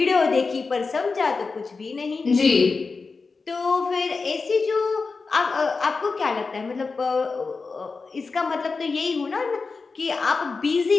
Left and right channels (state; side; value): quieter; right; 4.4 dB